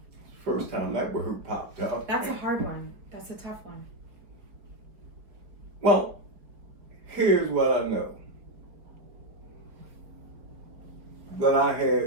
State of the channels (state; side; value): late; left; 4.6 ms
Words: First time that word popped up. That's a hard one. That's a tough one. Well, here's what I know. That I